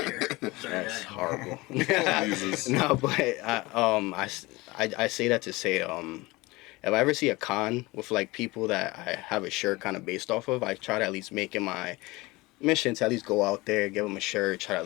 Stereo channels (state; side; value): quieter; right; 22.0 dB